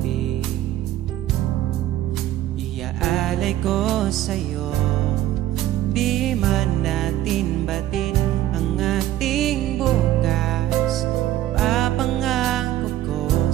Iaalay ko sa'yo, di man natin batin ang ating bukas. Papangako ko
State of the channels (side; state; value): left; quieter; 13.6 dB